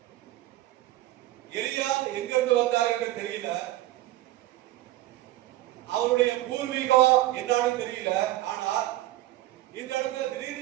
எலியா எங்கிருந்து வந்தார் என்று தெரியல, அவருடைய பூர்வீகம் என்னன்னு தெரியல. ஆனால் இந்த இடத்துல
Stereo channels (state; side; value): quieter; left; 16.1 dB